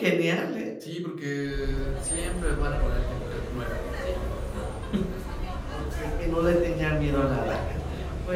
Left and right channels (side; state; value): both; identical; correlation 1.00